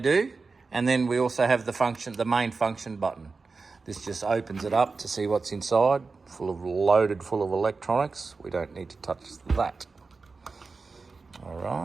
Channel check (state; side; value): quieter; left; 4.2 dB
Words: and then we also have the main function button. This just opens it up to see what's inside, loaded full of electronics. We don't need to touch that. All